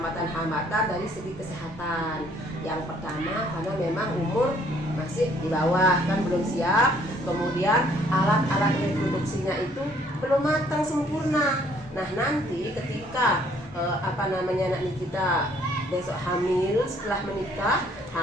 dari segi kesehatan. Yang pertama karena memang umur masih di bawah, kan belum siap. Kemudian alat-alat reproduksinya itu belum matang sempurna. Nah nanti ketika anak Nikita besok hamil, setelah menikah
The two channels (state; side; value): normal; both; correlation 0.62